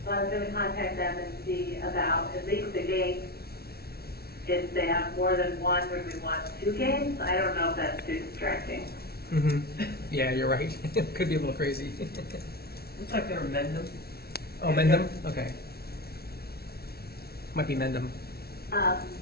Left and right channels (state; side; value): late; right; 0.45 ms